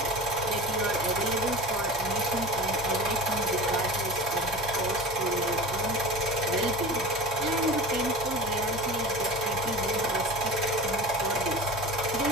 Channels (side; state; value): both; normal; correlation 0.33